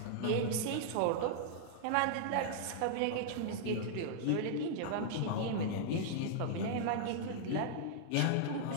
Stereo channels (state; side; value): different; both; correlation -0.01